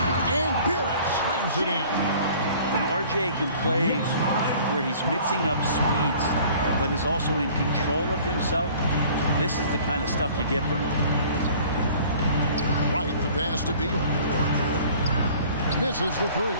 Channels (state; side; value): inverted; both; correlation -0.50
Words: And Barrett slams it in. And RJ can play where he's mixing up speeds, but is also in control of himself. This is the kind of stuff you get from him. Right, the pass to Beal. Misses the 3.